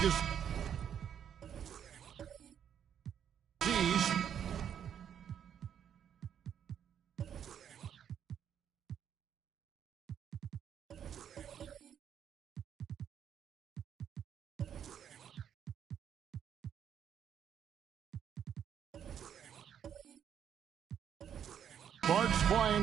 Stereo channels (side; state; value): left; quieter; 8.8 dB